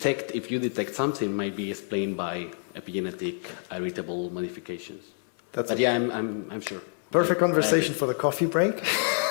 if you detect something, might be explained by epigenetic heritable modifications. But yeah, I'm sure. Perfect conversation for the coffee break.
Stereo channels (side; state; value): right; silent; 55 dB below the other